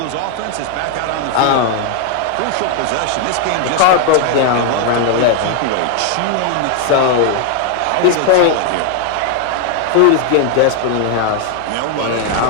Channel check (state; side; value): different; both; correlation 0.01